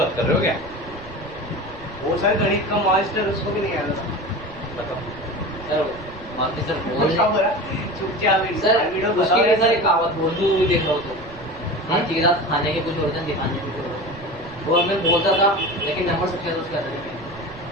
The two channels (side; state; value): right; noise; rumble, 19 dB below the sound